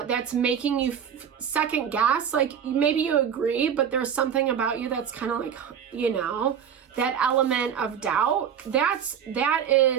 making you second guess, like maybe you agree, but there's something about you that's kind of like, you know, that element of doubt, that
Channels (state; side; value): quieter; left; 8.2 dB